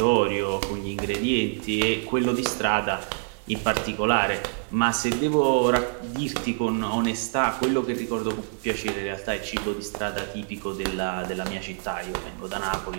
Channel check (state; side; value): silent; left; digital silence